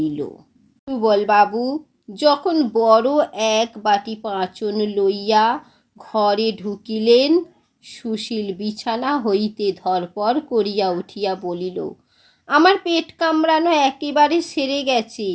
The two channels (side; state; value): both; identical; correlation 1.00